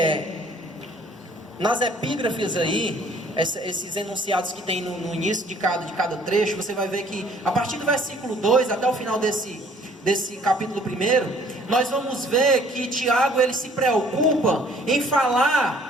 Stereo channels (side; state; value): both; normal; correlation 0.58